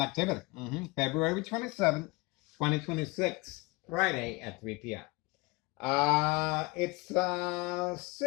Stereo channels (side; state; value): right; quieter; 24.8 dB